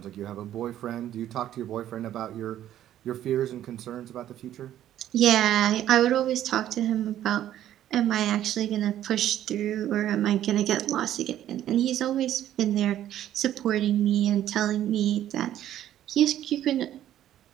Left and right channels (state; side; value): quieter; left; 11.9 dB